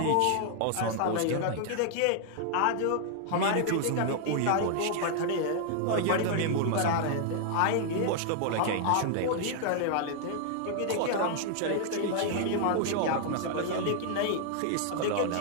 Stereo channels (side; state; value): both; different; correlation 0.00